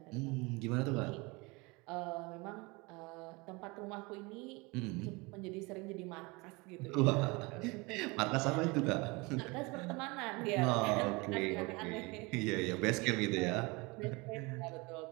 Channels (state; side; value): quieter; left; 26.1 dB